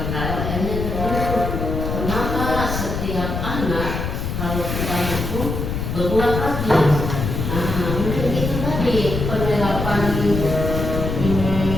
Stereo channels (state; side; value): noise; left; rumble, 3 dB below the sound